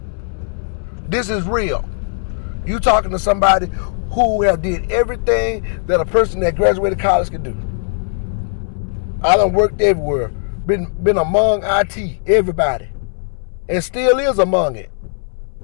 This is real. You talking to somebody who have did everything that a person that graduated college could do. I done worked everywhere. Been among IT, everybody. And still is among it.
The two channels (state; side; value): silent; right; 65 dB below the other